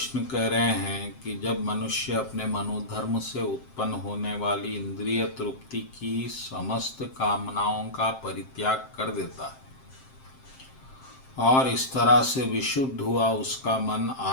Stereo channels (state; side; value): late; right; 7.6 ms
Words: कह रहे हैं कि जब मनुष्य अपने मनोधर्म से उत्पन्न होने वाली इंद्रिय तृप्ति की समस्त कामनाओं का परित्याग कर देता है और इस तरह से विशुद्ध हुआ उसका मन